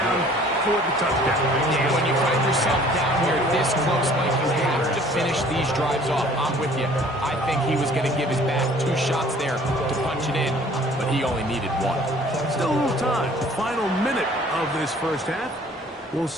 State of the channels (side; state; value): both; normal; correlation 0.53